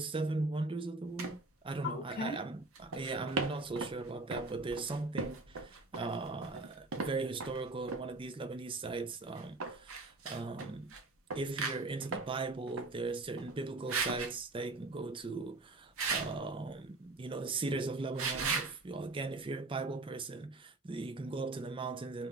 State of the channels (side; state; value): left; quieter; 3.1 dB